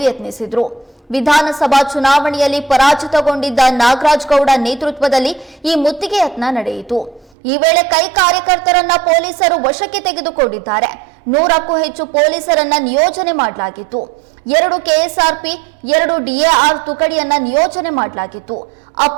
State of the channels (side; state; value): left; drops out; at 7.3 s